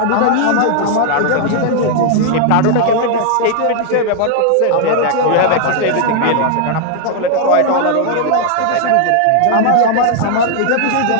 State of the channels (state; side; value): different; both; correlation 0.00